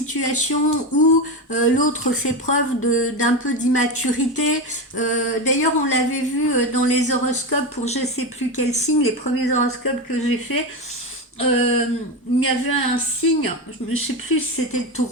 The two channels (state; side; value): normal; both; correlation 0.17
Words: où l'autre fait preuve d'un peu d'immaturité. D'ailleurs, on l'avait vu dans les horoscopes pour je sais plus quel signe, les premiers horoscopes que j'ai fait, il y avait un signe, je ne sais plus si c'était le